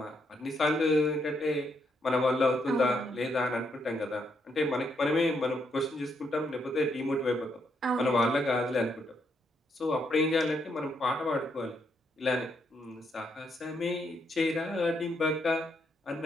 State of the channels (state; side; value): normal; both; correlation 0.76